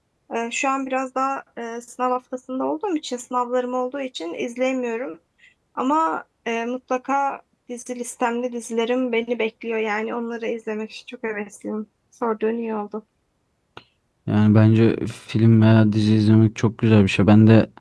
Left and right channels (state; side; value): identical; both; correlation 1.00